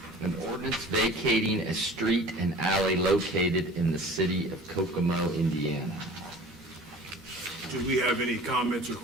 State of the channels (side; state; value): both; normal; correlation 0.43